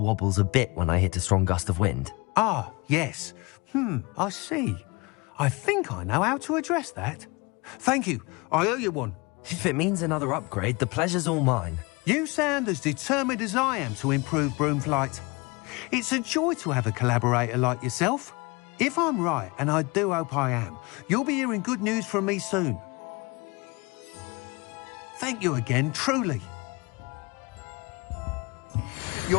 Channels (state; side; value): quieter; right; 26.3 dB